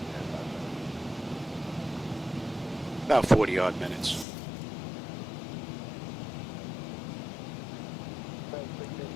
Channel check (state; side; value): drops out; right; at 4.2 s